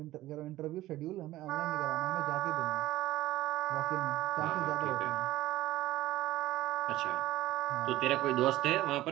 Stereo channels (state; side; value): quieter; left; 15.9 dB